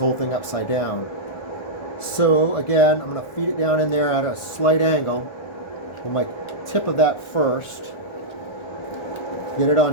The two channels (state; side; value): late; right; 1.4 ms